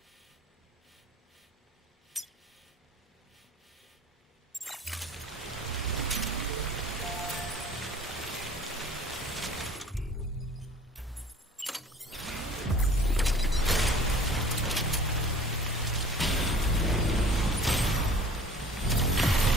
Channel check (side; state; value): both; normal; correlation 0.47